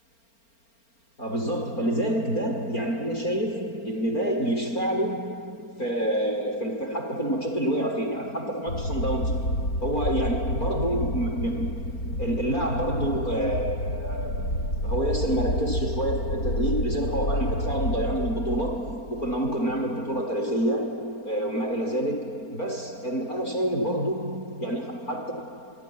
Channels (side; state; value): right; late; 4.4 ms